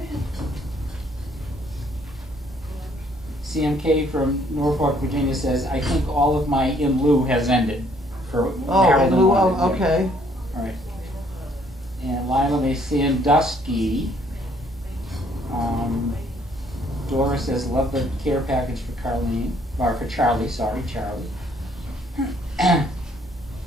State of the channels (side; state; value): both; normal; correlation 0.64